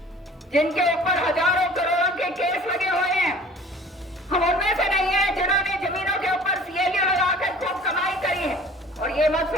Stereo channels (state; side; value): normal; both; correlation 0.47